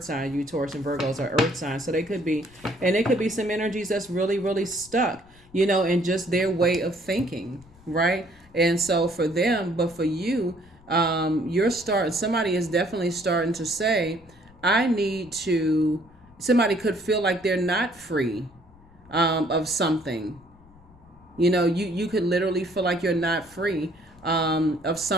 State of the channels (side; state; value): left; noise; rumble, 26 dB below the sound